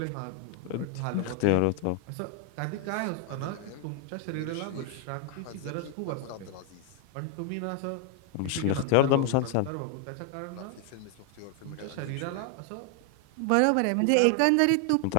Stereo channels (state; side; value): different; both; correlation 0.00